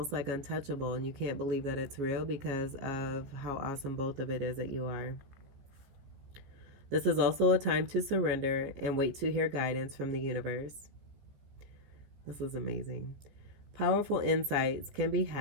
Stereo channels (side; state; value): left; late; 15 ms